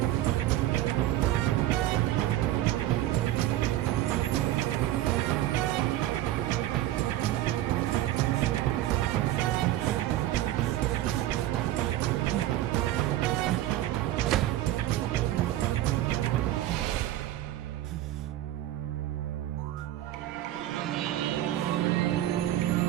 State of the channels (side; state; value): left; quieter; 14.1 dB